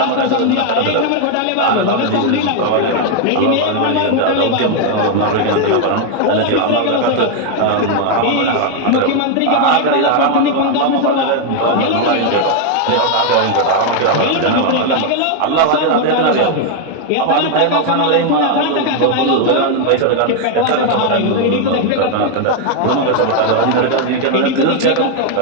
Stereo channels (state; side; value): different; both; correlation 0.01